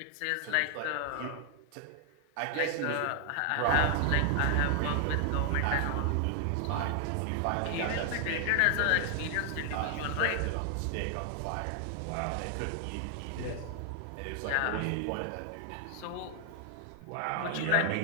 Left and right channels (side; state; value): both; different; correlation 0.00